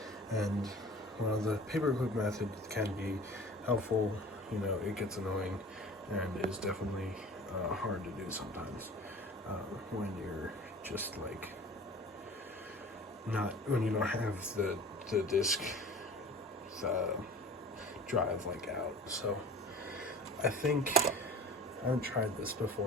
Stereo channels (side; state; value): both; normal; correlation 0.42